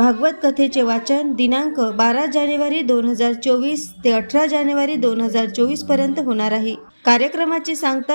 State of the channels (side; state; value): both; inverted; correlation -1.00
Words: कथेचे वाचन दिनांक 12 जानेवारी 2024 ते 18 जानेवारी 2024 पर्यंत होणार आहे। कार्यक्रमाची